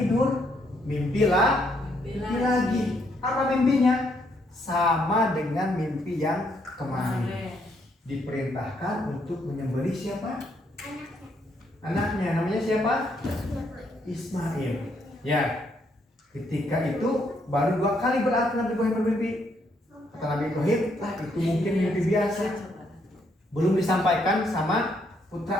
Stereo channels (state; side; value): normal; both; correlation 0.73